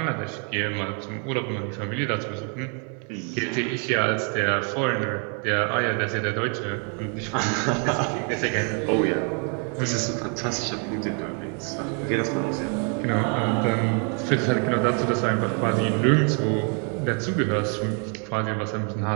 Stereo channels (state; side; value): quieter; left; 39.6 dB